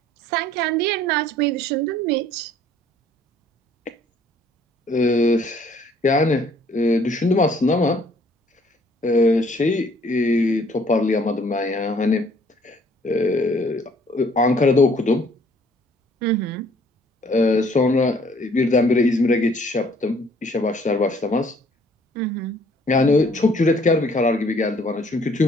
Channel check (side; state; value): both; normal; correlation 0.60